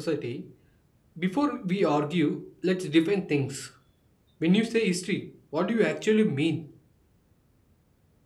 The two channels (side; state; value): both; identical; correlation 1.00